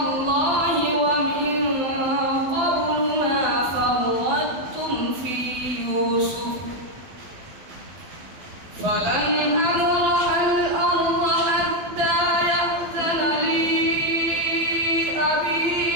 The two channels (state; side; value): late; left; 12 ms